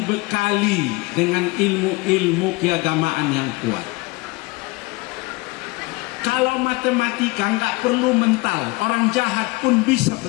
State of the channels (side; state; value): right; quieter; 24.4 dB